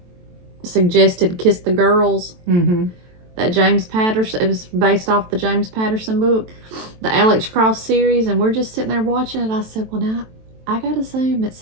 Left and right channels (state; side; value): late; left; 23 ms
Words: suggested Kiss the Girls. Mm-hmm. That James Patterson, it was based off the James Patterson book, the Alex Cross series, and we're just sitting there watching it. I said, well, now, I got to Zoom at